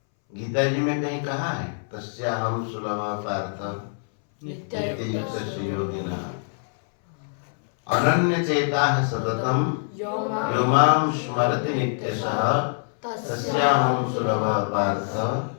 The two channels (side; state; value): right; silent; 62 dB below the other